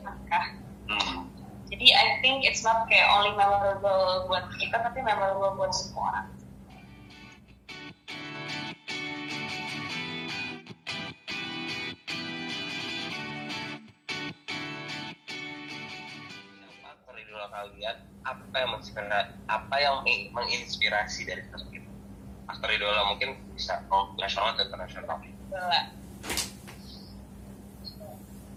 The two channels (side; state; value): both; identical; correlation 1.00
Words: Jadi I think it's not kayak only memorable buat kita, tapi memorable buat semua orang. Aktor idola kalian, apa yang menginspirasi dari sosok itu? Aktor idola mungkin bisa nasional atau internasional.